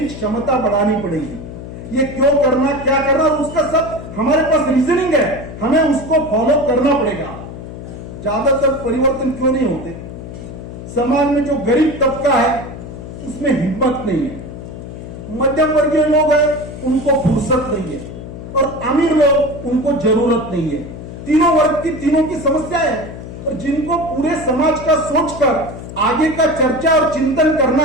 क्षमता बढ़ानी पड़ेगी। ये क्यों करना, क्या करना, और उसका सब हमारे पास रीजनिंग है, हमें उसको फॉलो करना पड़ेगा। ज्यादातर परिवर्तन क्यों नहीं होते? समाज में जो गरीब तबका है उसमें हिम्मत नहीं है, मध्यम वर्गीय लोग हैं उनको फुर्सत नहीं है, और अमीर लोग उनको जरूरत नहीं है। तीनों वर्ग की तीनों की समस्या है, और जिनको पूरे समाज का सोचकर आगे का चर्चा और चिंतन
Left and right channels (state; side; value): noise; left; hum, 11 dB below the sound